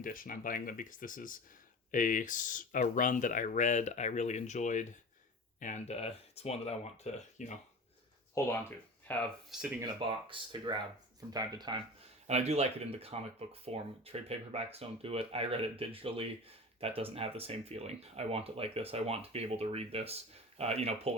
I'm buying them because this is a run that I read, I really enjoyed, and it's one that I want to, hold on to, have sitting in a box to grab from time to time. And I do like it in the comic book form. Trade paperbacks don't do it. I read it digitally. that doesn't have the same feeling. I want it like this. I want to be able to read this,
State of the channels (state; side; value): normal; both; correlation 0.33